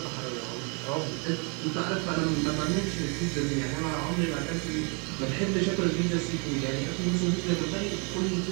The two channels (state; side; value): quieter; left; 34.6 dB